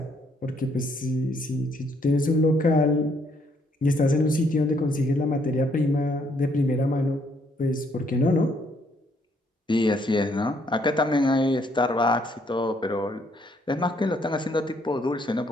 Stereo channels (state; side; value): normal; both; correlation 0.69